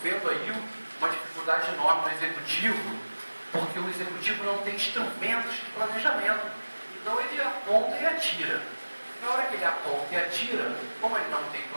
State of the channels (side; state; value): both; inverted; correlation -1.00